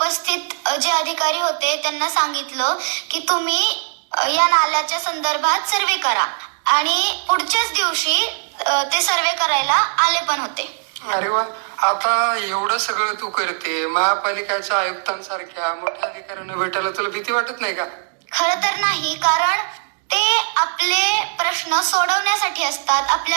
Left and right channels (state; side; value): silent; left; digital silence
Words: जे अधिकारी होते त्यांना सांगितलं की तुम्ही या नाल्याच्या संदर्भात सर्वे करा. आणि पुढच्याच दिवशी ते सर्वे करायला आले पण होते. अरे वा, आता एवढं सगळं तू करते, महापालिकेच्या आयुक्तांसारख्या मोठ्या अधिकाऱ्यांना भेटायला तुला भीती वाटत नाही का? खरं तर नाही, कारण ते आपले प्रश्न सोडवण्यासाठी असतात,